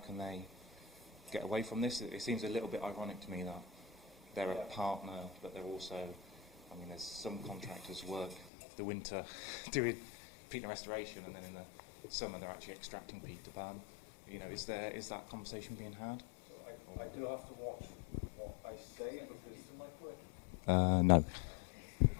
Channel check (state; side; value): drops out; right; at 8.5 s